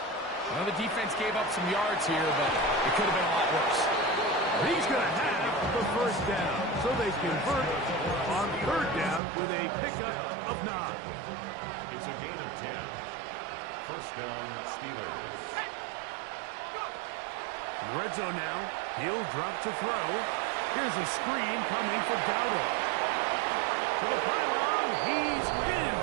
know the defense gave up some yards here, but it could have been a lot worse. He's going to have the first down, so they convert on third down with a pickup of 9. It's a gain of 10. First down, Steelers. In the red zone now, he'll drop to throw. Here's a screen coming for Dowdle. To the pylon, he's in.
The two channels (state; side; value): drops out; left; at 9.2 s